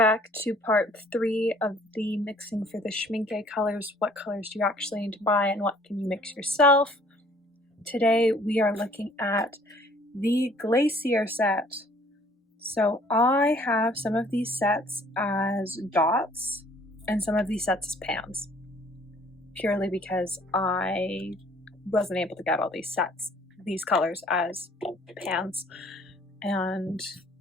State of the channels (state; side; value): normal; both; correlation 0.57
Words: to part 3 of the mixing for the Schmincke colors. What colors do you actually need to buy, and what can you mix yourself? Today we are looking at the Glacier set. So I have some of these sets as dots and some of these sets as pans, purely because I wasn't able to get all these colors as pans, and